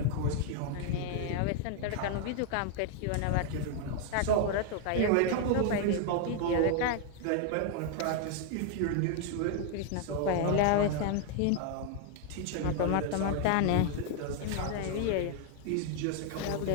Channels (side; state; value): both; different; correlation 0.00